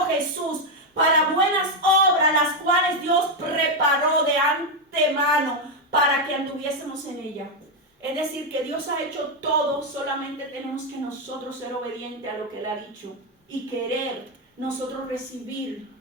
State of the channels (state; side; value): normal; both; correlation 0.04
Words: Jesús, para buenas obras, las cuales Dios preparó de antemano para que anduviésemos en ella. Es decir, que Dios ha hecho todo, solamente tenemos que nosotros ser obedientes a lo que Él ha dicho y querer nosotros recibir